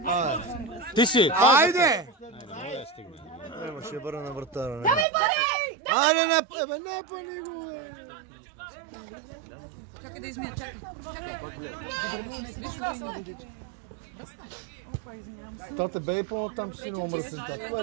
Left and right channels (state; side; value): drops out; left; at 5.1 s